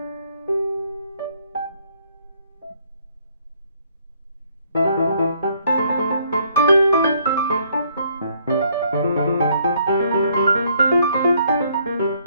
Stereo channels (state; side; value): inverted; both; correlation -0.67